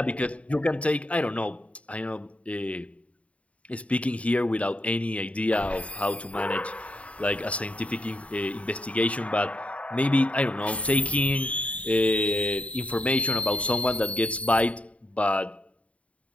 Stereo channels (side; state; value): right; late; 0.065 ms